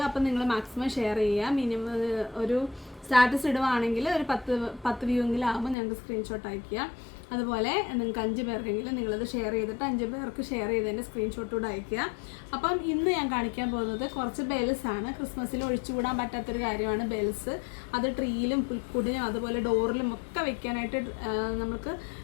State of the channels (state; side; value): drops out; right; at 5.8 s